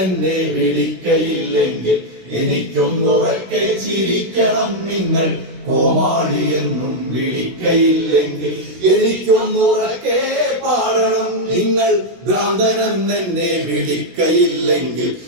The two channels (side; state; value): left; late; 16 ms